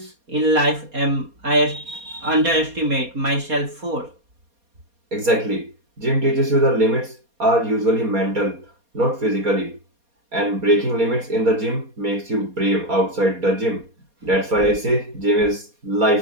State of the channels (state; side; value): late; left; 4.2 ms